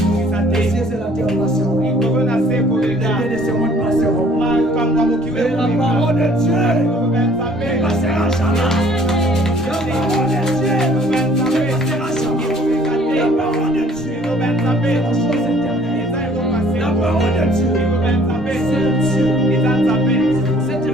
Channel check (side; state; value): both; normal; correlation 0.58